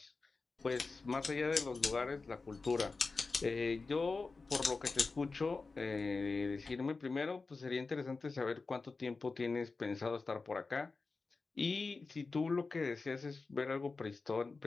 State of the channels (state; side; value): quieter; right; 4.0 dB